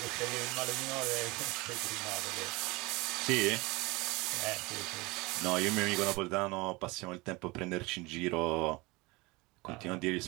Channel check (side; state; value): left; quieter; 24.0 dB